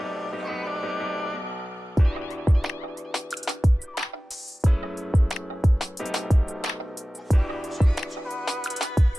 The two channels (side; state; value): both; normal; correlation 0.96